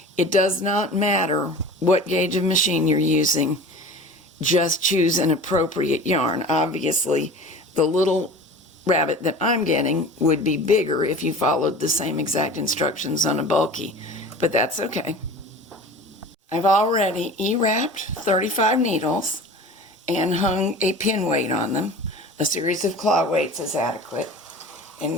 It does not matter what gauge of machine you're using, just choose an appropriate yarn. Obviously, the little rabbit that I'm getting would be bigger if you followed the same exact instructions on a bulky, but that's okay. I've already E-wrapped 35 needles and hung a pin weight on them. A series of claw weights is adequate. And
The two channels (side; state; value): both; normal; correlation 0.38